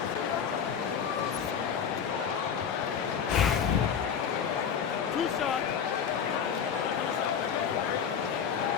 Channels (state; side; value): quieter; right; 7.5 dB